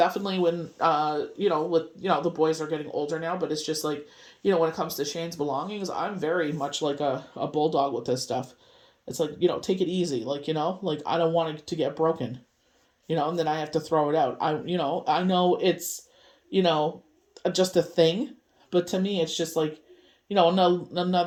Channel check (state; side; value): identical; both; correlation 1.00